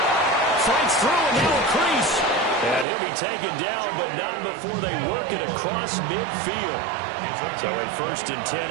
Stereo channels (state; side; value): drops out; left; at 2.9 s